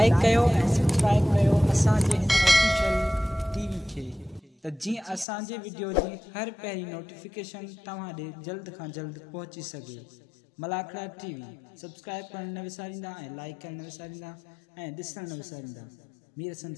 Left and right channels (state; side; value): drops out; right; at 5.2 s